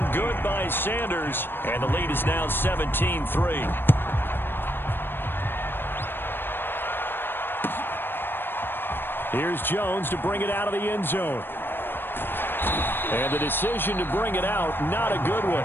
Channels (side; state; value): right; late; 0.099 ms